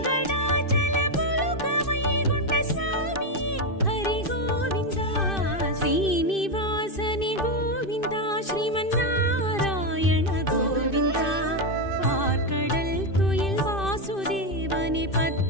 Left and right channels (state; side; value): late; right; 2.6 ms